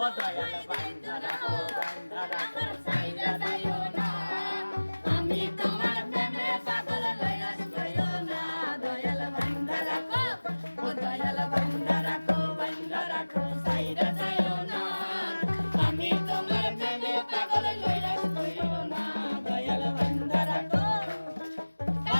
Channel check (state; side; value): inverted; both; correlation -1.00